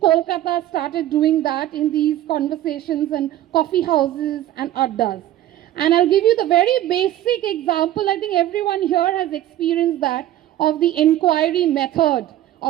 Kolkata started doing that in these conversations and coffee houses and addas. And I'll give you the very basic example. I think everyone here has experienced that, of the inquiry method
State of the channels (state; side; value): quieter; left; 13.3 dB